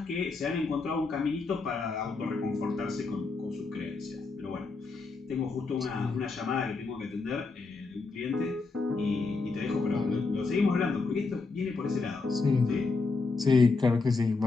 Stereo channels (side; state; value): right; quieter; 4.1 dB